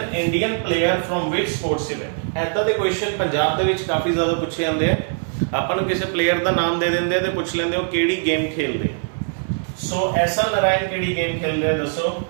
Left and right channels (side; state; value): left; silent; 59 dB below the other